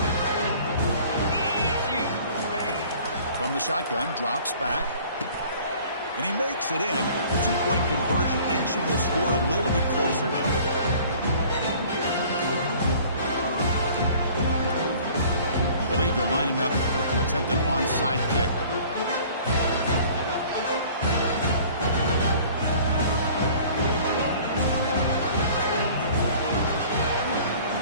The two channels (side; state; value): both; inverted; correlation -0.50